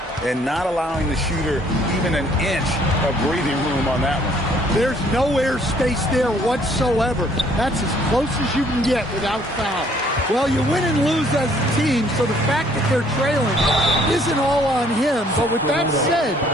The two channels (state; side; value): normal; both; correlation 0.62